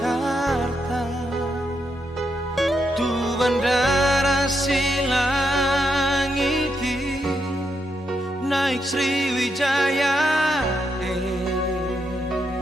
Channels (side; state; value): both; normal; correlation 0.81